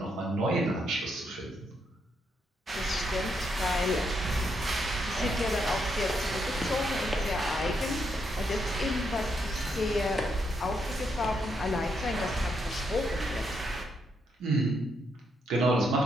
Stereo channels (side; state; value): both; normal; correlation 0.78